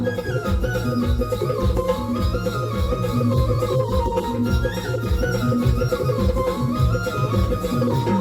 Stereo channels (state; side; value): identical; both; correlation 1.00